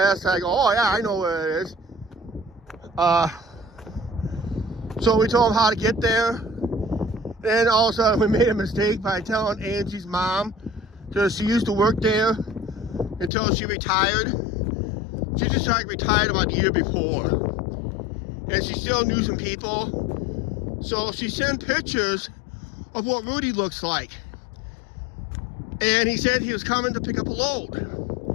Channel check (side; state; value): right; drops out; at 13.3 s